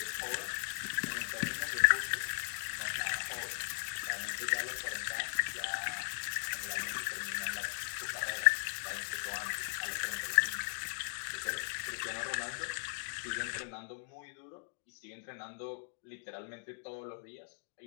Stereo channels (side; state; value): right; silent; digital silence